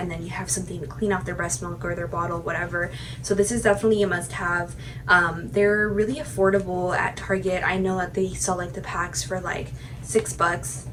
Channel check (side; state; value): both; identical; correlation 1.00